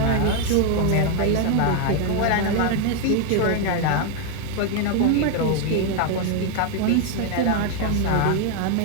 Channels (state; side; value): different; both; correlation 0.01